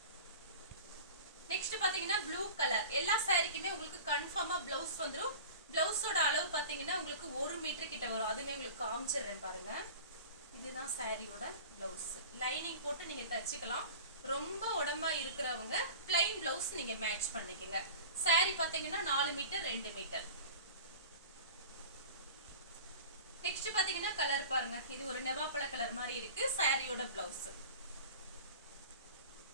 நெக்ஸ்ட் பாத்தீங்கன்னா ப்ளூ கலர். எல்லா சாரிக்குமே உங்களுக்கு கன்ஃபார்மா பிளவுஸ் வந்துடும். பிளவுஸோட அளவு பாத்தீங்கன்னா உங்களுக்கு 1 மீட்டர் கிட்ட வரும். அதுமே உங்களுக்கு காமிச்சிடுறேன் பாருங்க. இதுதான் சாரியோட பிளவுஸ். லைனிங் போட்டு நீங்க தச்சுக்கலாம். ரொம்ப உடம்பா இருக்கிறவங்க பிளைன் பிளவுஸ் நீங்க மேட்ச் பண்ணிக்கங்க. சாரி பாத்தீங்கன்னா 4 மீட்டர் 2 மீட்டர். நெக்ஸ்ட் பாத்தீங்கன்னா கலர் பாருங்க, இது ஒரு நெவாப்பழ கலர் மாதிரி இருக்கு. சாரியோட பிளவுஸ்.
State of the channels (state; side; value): inverted; both; correlation -0.38